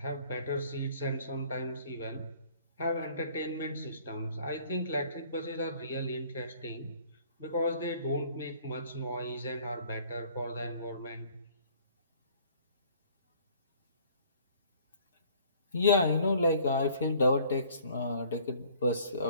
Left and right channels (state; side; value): inverted; both; correlation -0.55